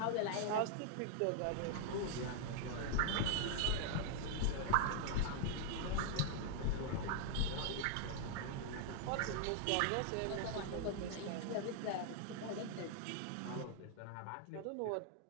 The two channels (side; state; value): both; different; correlation 0.00